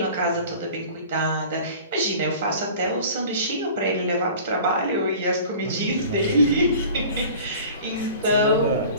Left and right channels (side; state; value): both; inverted; correlation -0.43